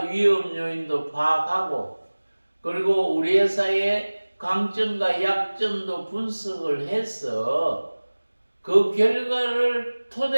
위험 요인도 파악하고 그리고 우리 회사의 강점과 약점도 분석을 해서 그 결과를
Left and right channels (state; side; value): inverted; both; correlation -1.00